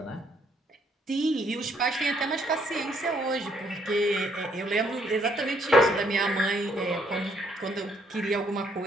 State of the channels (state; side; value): normal; both; correlation 0.69